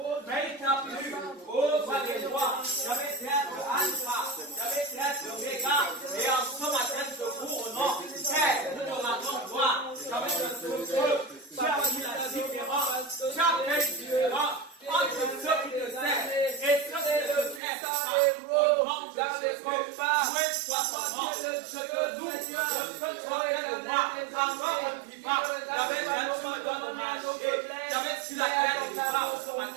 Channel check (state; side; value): drops out; left; at 17.6 s